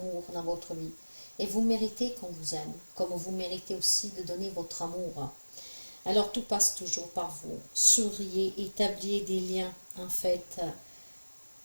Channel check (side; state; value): both; inverted; correlation -1.00